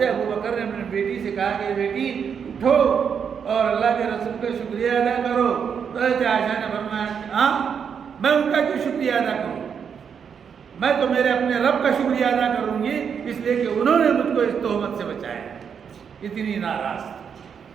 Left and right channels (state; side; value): quieter; left; 7.1 dB